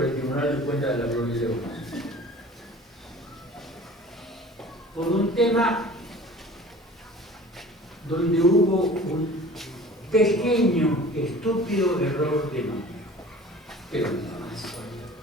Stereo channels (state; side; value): normal; both; correlation 0.44